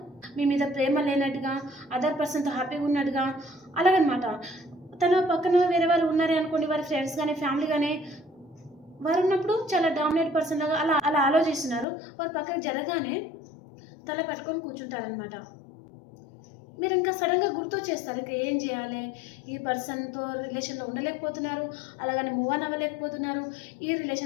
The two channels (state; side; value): drops out; right; at 11.9 s